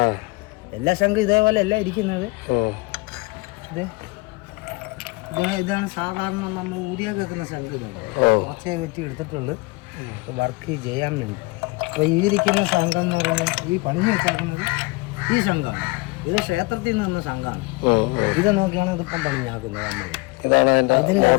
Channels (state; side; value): quieter; right; 24.8 dB